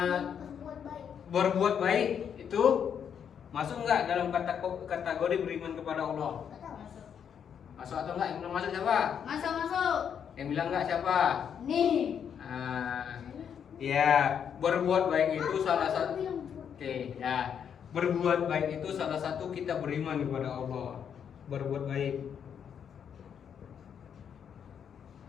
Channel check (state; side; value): quieter; right; 8.0 dB